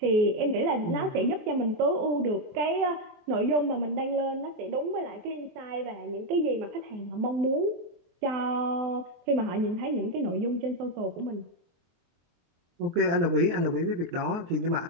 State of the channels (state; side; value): late; left; 23 ms